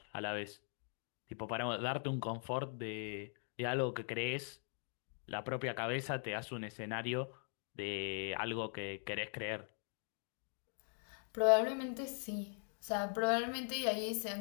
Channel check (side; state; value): right; silent; 50 dB below the other